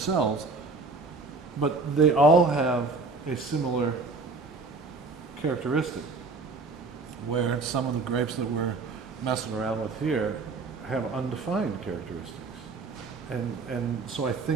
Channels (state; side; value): quieter; left; 3.8 dB